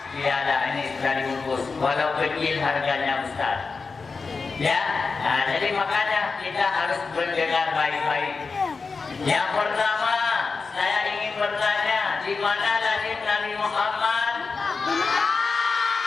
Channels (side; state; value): right; quieter; 4.5 dB